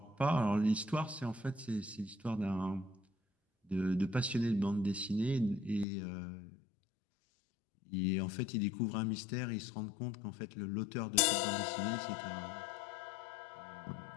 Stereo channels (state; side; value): drops out; right; at 5.9 s